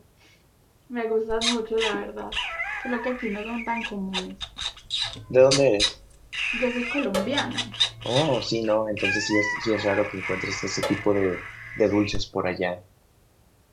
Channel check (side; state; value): both; identical; correlation 1.00